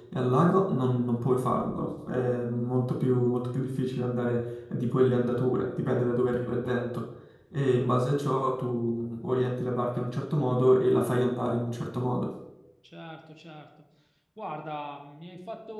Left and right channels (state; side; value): identical; both; correlation 1.00